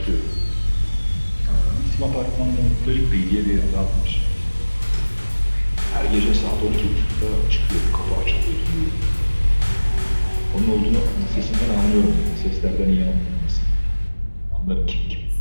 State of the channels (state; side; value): inverted; both; correlation -1.00